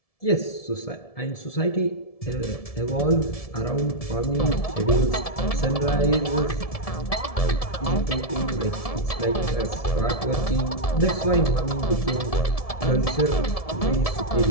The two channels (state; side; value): late; right; 1.7 ms